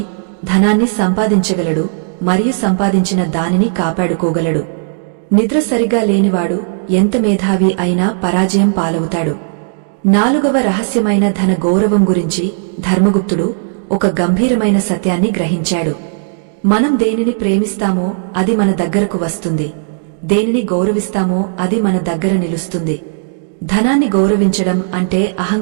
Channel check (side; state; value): left; silent; digital silence